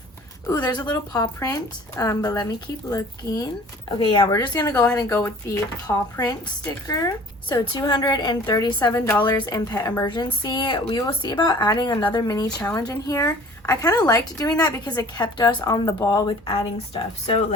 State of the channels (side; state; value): both; normal; correlation 0.49